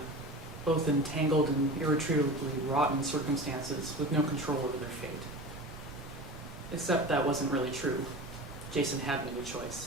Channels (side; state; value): right; noise; rumble, 15 dB below the sound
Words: both entangled in irretrievably rotten circumstances with no control over their fate. Except that wasn't really true. Jason had made a